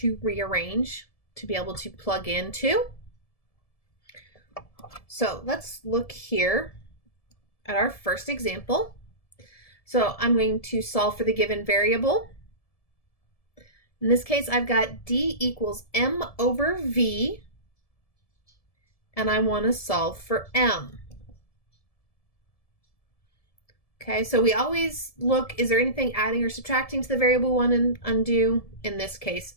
rearrange to be able to plug into. So let's look here at our first example. So I'm going to solve for the given variable. In this case, I've got d equals m over v, and I want to solve for m. Okay, so we always look, is there anything adding or subtracting to the variable one and undo? In this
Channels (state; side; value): late; right; 1.7 ms